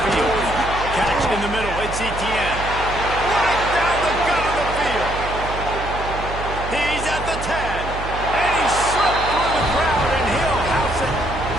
Catch in the middle, it's Etienne. Right down the gut of the field. He's at the 10, and he slipped through the crowd, and he'll house it.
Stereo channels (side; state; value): right; noise; hum, 8 dB below the sound